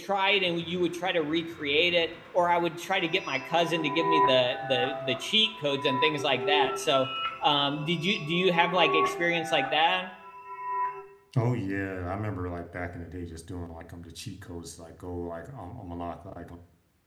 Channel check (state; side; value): identical; both; correlation 1.00